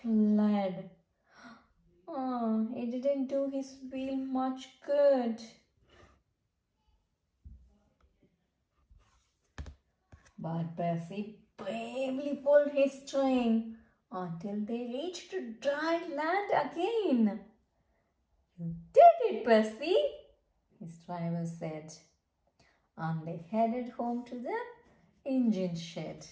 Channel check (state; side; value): identical; both; correlation 1.00